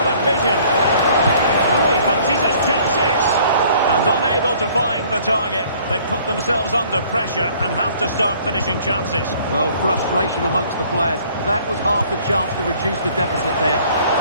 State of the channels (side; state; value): both; inverted; correlation -0.57